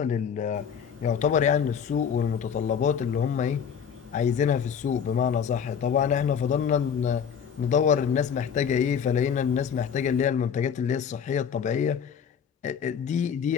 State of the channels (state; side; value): quieter; right; 7.4 dB